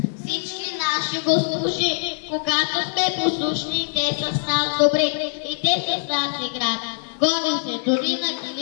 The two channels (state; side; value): silent; right; digital silence